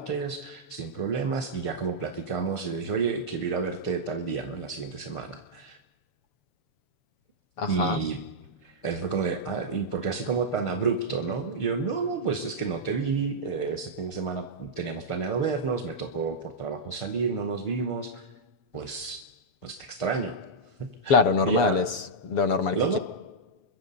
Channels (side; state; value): right; late; 7.0 ms